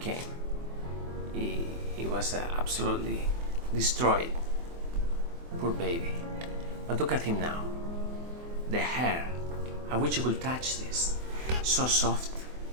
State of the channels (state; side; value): late; left; 24 ms